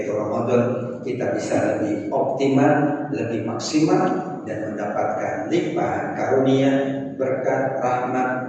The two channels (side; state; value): both; identical; correlation 1.00